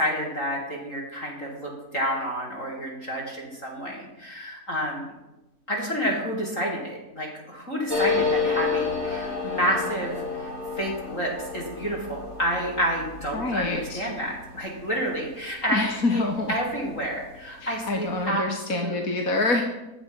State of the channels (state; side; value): late; right; 3.8 ms